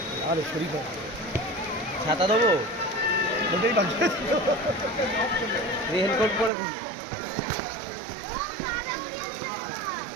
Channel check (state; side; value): drops out; left; at 6.5 s